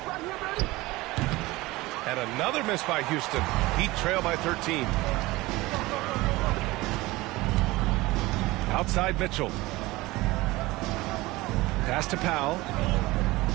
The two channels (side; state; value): left; quieter; 20.2 dB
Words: And another miss by Houston. Heat trail by 13. Outside Mitchell. Pass to Powell.